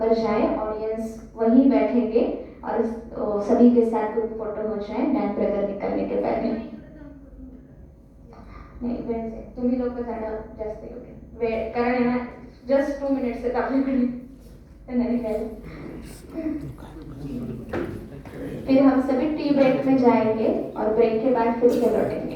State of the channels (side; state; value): both; identical; correlation 1.00